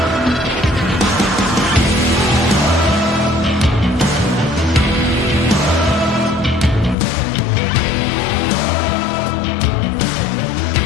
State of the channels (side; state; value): right; drops out; at 7.0 s